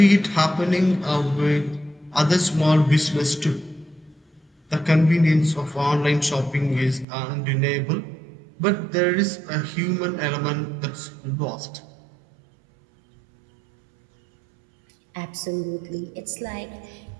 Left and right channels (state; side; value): drops out; left; at 7.1 s